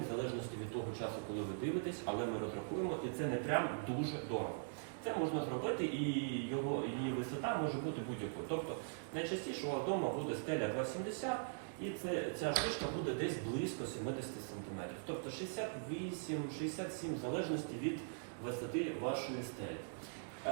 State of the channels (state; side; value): silent; left; digital silence